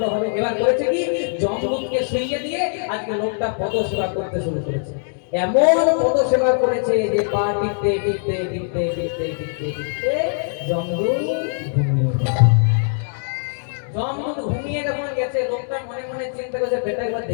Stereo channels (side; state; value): right; silent; digital silence